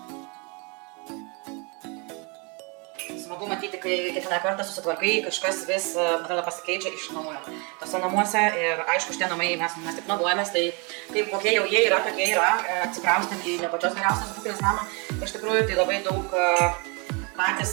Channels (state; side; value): quieter; left; 32.0 dB